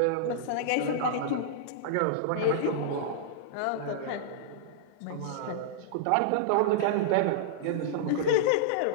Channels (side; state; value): both; different; correlation -0.02